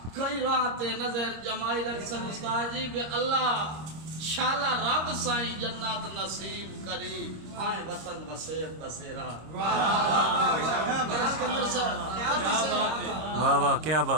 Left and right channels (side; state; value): left; late; 26 ms